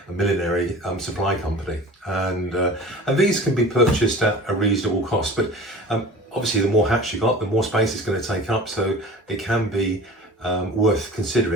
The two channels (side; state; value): both; normal; correlation 0.40